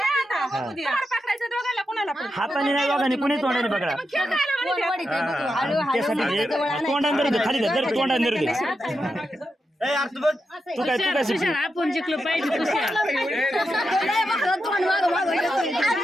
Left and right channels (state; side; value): normal; both; correlation 0.87